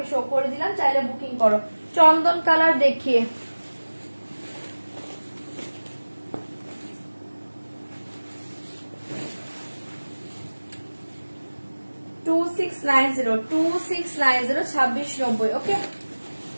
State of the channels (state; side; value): inverted; both; correlation -1.00